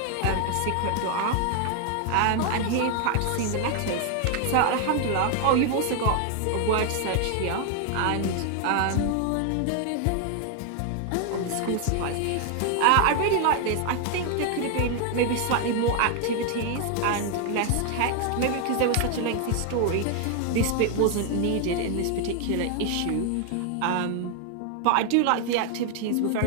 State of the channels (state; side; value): different; both; correlation 0.00